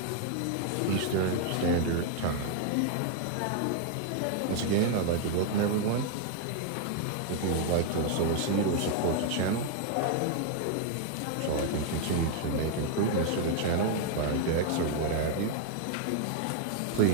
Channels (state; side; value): different; both; correlation 0.00